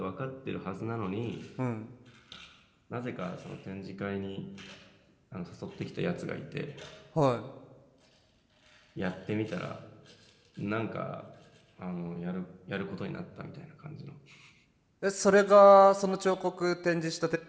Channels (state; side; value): identical; both; correlation 1.00